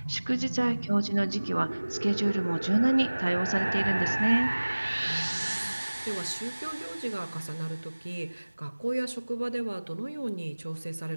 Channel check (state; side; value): inverted; both; correlation -1.00